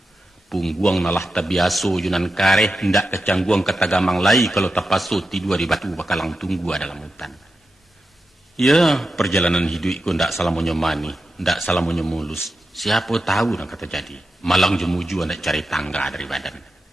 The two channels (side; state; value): both; normal; correlation 0.90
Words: Pungguang nalah tabiaso yunan kareh hendak kecangguang katagamang lai kalau tapaso tidur di batu bakalang tunggu dalam hutan. Ya, perjalanan hidupku ndak salah menyemani, ndak salah mulus. Siapa tahu nak kata jadi. Malang jemuju ndak cari tangga dari badan.